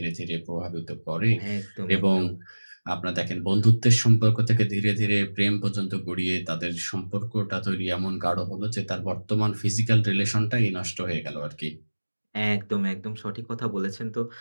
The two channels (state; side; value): inverted; both; correlation -1.00